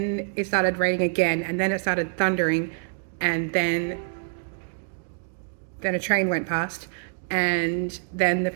it started raining again, and then it started thundering, and then a train went past, and then the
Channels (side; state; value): left; silent; digital silence